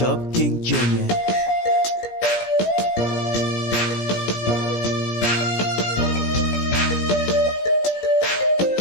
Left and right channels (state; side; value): late; right; 17 ms